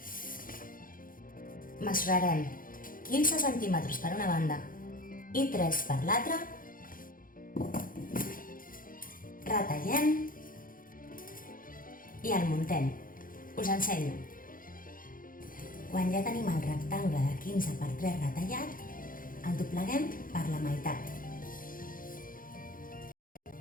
mesurarem 15 centímetres per una banda i 3 per l'altra, retallem i el muntem. Us ensenyo. Quan ja tenim el rectangle de 15 per 3 retallat, el dobleguem per la meitat.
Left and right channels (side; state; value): right; late; 0.40 ms